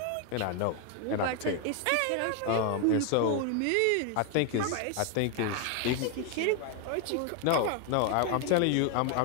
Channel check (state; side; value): different; both; correlation 0.01